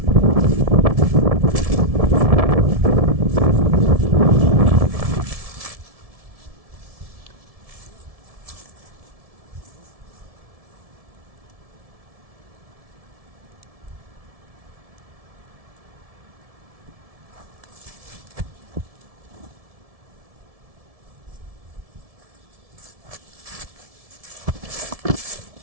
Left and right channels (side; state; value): left; late; 1.7 ms